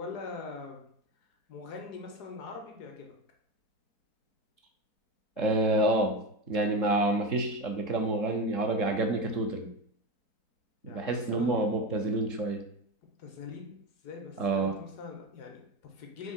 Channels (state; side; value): late; right; 3.7 ms